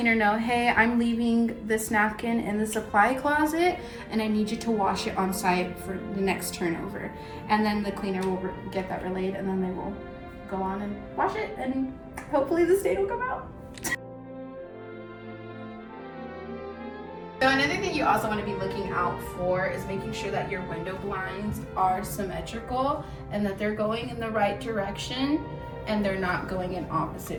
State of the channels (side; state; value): both; identical; correlation 1.00